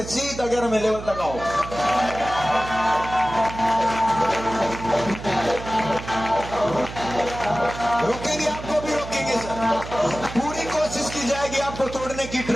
सीधा 11वें लेवल तक आओ। रोकेंगे, आपको भी रोकेंगे सर। पूरी कोशिश की जाएगी आपको तोड़ने की,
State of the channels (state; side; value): noise; right; hum, 11 dB below the sound